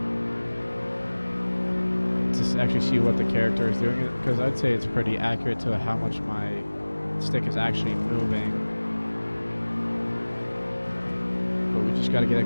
actually see what the character is doing, because I'd say it's pretty accurate to how much my stick is actually moving. But we just got to get a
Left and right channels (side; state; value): both; inverted; correlation -1.00